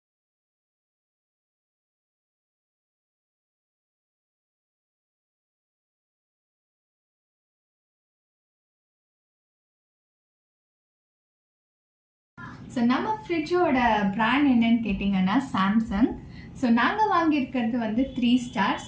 ஸோ நம்ம ஃப்ரிட்ஜோட பிராண்ட் என்னன்னு கேட்டிங்கன்னா சாம்சங். ஸோ நாங்கள் வாங்கியிருக்கிறது 3 ஸ்டார்.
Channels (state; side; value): identical; both; correlation 1.00